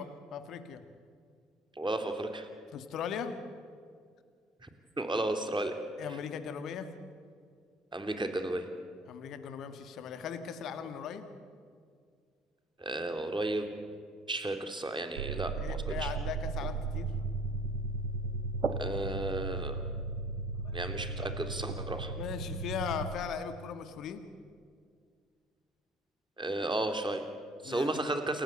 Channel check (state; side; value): normal; both; correlation 0.49